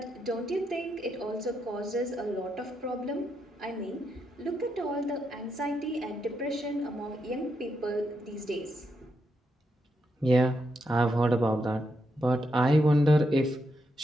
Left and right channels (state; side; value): normal; both; correlation 0.81